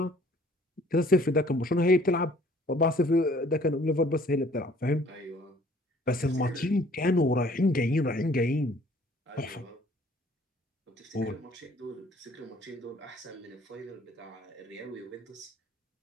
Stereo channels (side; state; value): both; normal; correlation 0.57